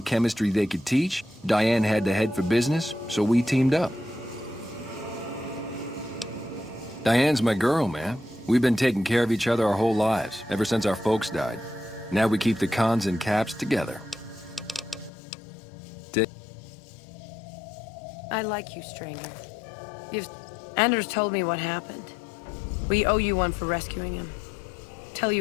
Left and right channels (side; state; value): right; drops out; at 15.1 s